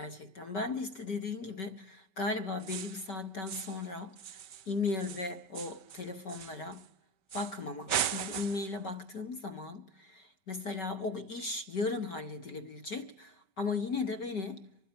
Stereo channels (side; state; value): right; late; 5.2 ms